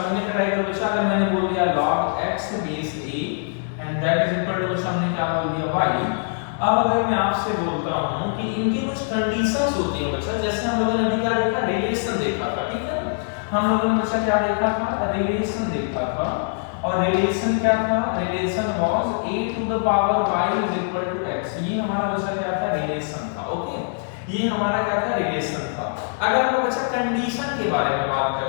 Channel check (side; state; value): right; silent; 61 dB below the other